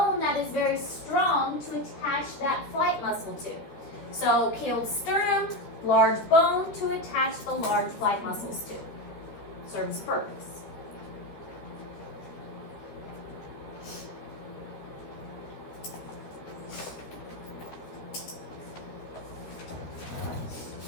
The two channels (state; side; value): late; right; 13 ms